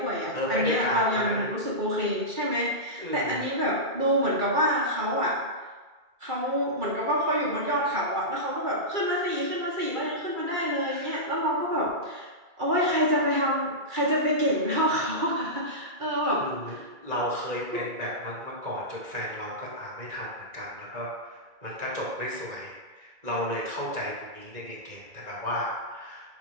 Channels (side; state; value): left; late; 2.3 ms